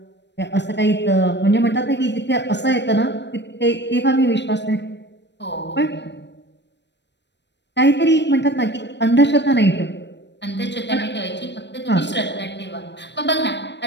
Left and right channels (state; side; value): late; right; 0.51 ms